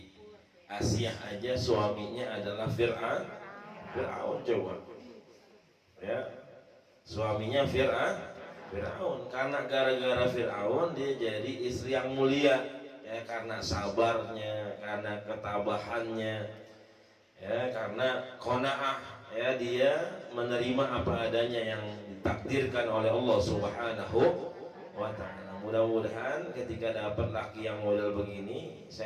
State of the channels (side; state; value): both; identical; correlation 1.00